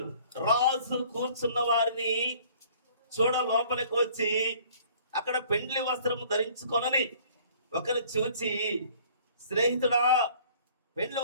రాజు కూర్చున్న వారిని చూడ లోపలికి వచ్చి అక్కడ పెండ్లి వస్త్రము ధరించుకొనని ఒకరు చూచి, స్నేహితుడా, పెండ్లి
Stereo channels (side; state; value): both; inverted; correlation -0.54